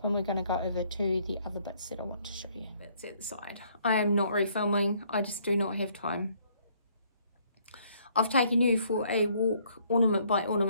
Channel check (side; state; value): both; inverted; correlation -0.65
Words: and we're going to go over to the other bits that I want to show you. That's at the side. I am not refilming. I just do not have time. I've taken you for a walk ornament by